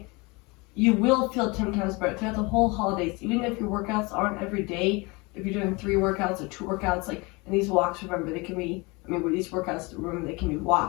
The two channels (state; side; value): quieter; right; 26.3 dB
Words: you will feel 10 times better throughout the whole holidays. Even if your workouts aren't every day, if you're doing 3 workouts or 2 workouts, like, and these walks, remember, they can be, with these workouts, remember, they can be